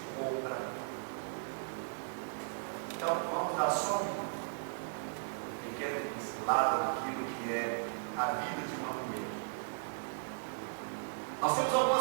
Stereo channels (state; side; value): silent; left; 53 dB below the other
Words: compra. Então, vamos dar só uma pequena pincelada naquilo que é a vida de uma mulher. Nós temos